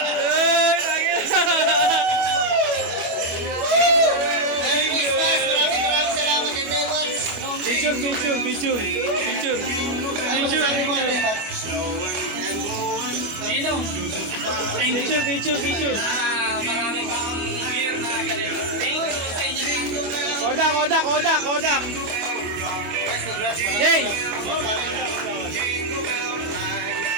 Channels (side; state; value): left; late; 25 ms